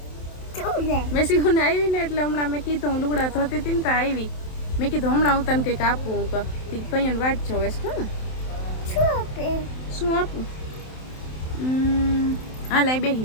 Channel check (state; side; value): late; right; 27 ms